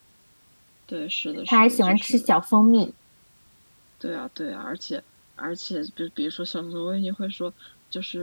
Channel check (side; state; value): both; inverted; correlation -1.00